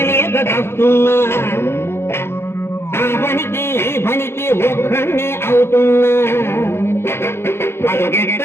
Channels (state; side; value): late; right; 0.12 ms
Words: తప్పున్నా ఆ పనికి ఈ పనికి ఒక్కడే అవుతున్నా